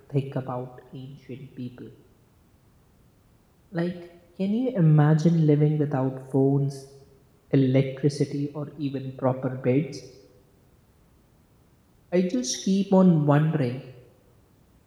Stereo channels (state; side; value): identical; both; correlation 1.00